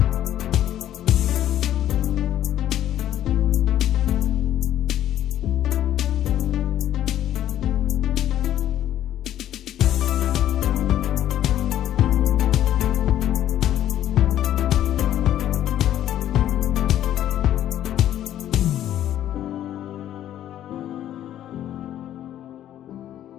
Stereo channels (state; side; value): quieter; right; 11.8 dB